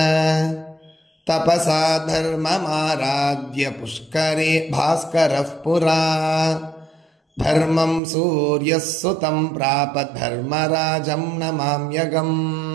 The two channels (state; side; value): drops out; left; at 8.0 s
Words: तपसा धर्ममाराध्य पुष्करे भास्करः पुरा धर्मं सूर्यः सुतं प्राप धर्मराजं